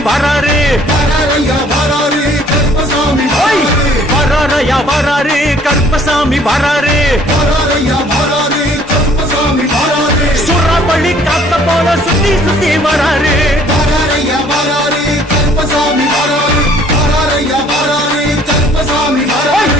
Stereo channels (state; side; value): normal; both; correlation 0.58